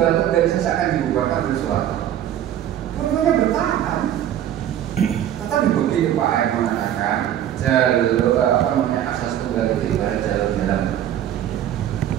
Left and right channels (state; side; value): quieter; left; 11.0 dB